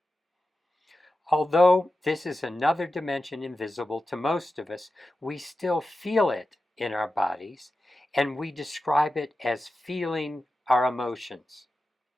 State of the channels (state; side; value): normal; both; correlation 0.93